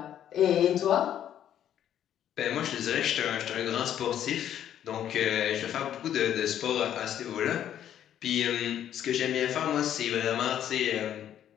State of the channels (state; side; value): quieter; right; 10.5 dB